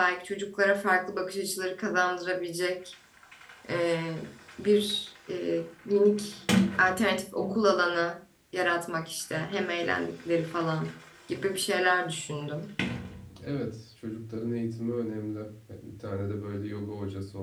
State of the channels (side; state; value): both; identical; correlation 1.00